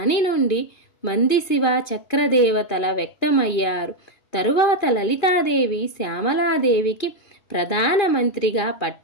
నుండి మంది శివ చక్రదేవతల వ్యక్తమయ్యారు. తరువాత లలితాదేవి శ్యామలాదేవికి ప్రధానమంత్రిగా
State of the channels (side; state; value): right; late; 2.5 ms